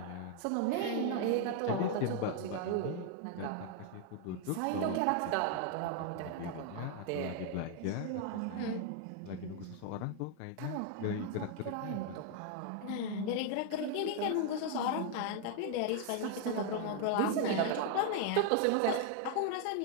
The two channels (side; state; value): both; different; correlation 0.00